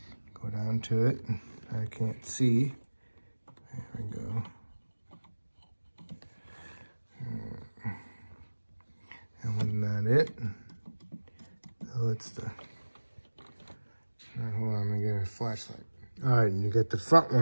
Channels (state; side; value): inverted; both; correlation -1.00